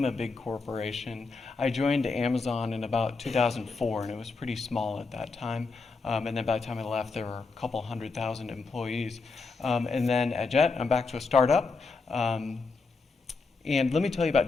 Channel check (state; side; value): quieter; right; 4.2 dB